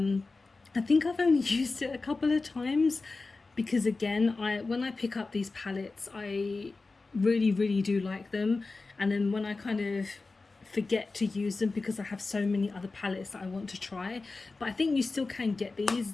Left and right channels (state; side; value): quieter; right; 3.7 dB